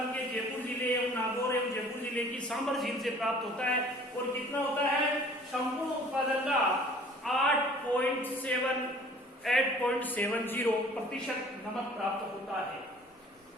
के जयपुर जिले एवं नागौर एवं जयपुर जिले की सांबर झील से प्राप्त होता है। और कितना होता है? संपूर्ण उत्पादन का 8.70% नमक प्राप्त होता है।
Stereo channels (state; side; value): normal; both; correlation 0.51